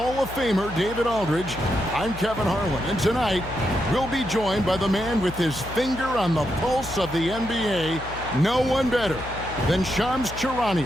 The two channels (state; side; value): noise; left; hum, 13 dB below the sound